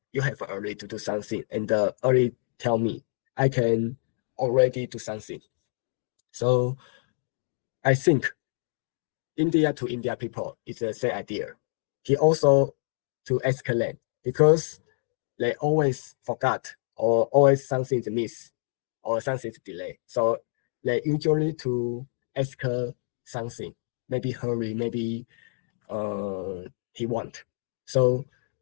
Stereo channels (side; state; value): right; silent; digital silence